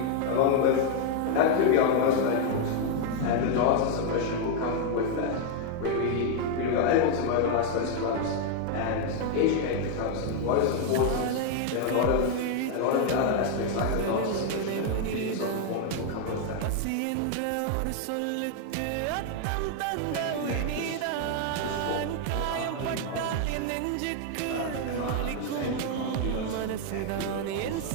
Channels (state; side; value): different; both; correlation 0.00